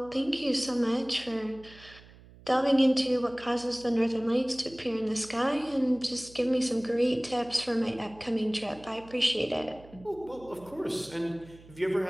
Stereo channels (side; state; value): right; noise; hum, 22 dB below the sound